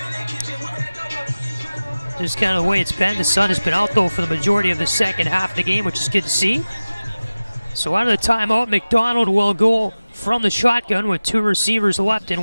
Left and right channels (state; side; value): inverted; both; correlation -0.97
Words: Just kind of the way it's been. The sun has been out though for the majority of the second half of the game, which is good to see. So out of the timeout, McDonald will go from the shotgun with 2 receivers left